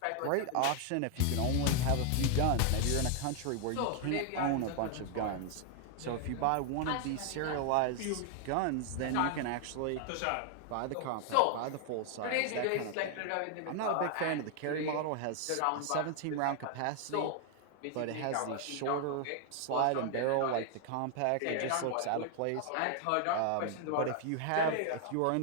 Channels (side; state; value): both; different; correlation 0.00